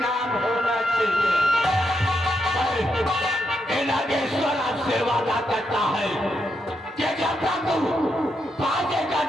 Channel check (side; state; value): both; normal; correlation 0.82